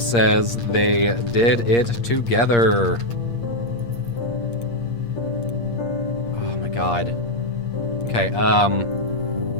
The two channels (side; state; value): right; late; 8.6 ms